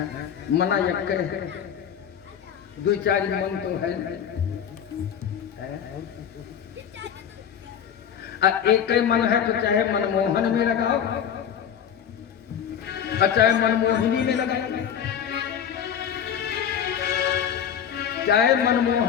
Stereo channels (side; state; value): right; quieter; 8.6 dB